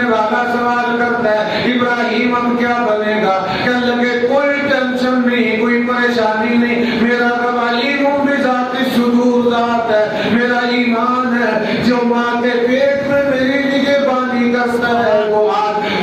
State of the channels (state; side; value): identical; both; correlation 1.00